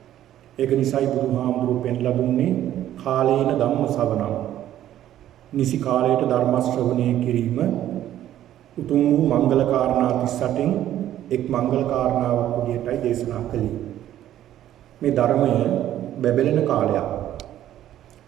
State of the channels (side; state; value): left; quieter; 12.2 dB